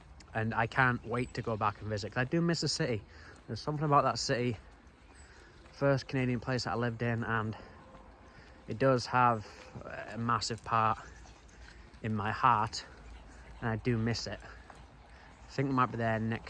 and I can't wait to go back and visit, because I do miss the city. There's something about that city, first Canadian place that I lived in, and it does have a massive part in my heart, and I do miss it. I think we might be there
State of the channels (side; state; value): both; identical; correlation 1.00